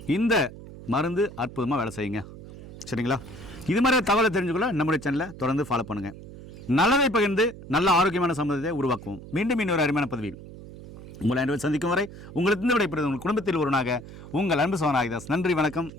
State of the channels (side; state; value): right; noise; hum, 15 dB below the sound